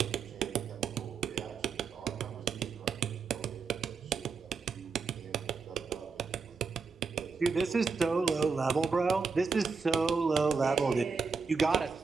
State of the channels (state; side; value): quieter; left; 5.0 dB